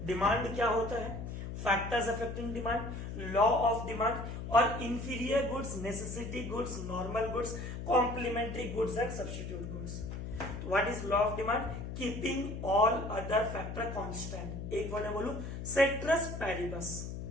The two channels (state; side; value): noise; left; hum, 7 dB below the sound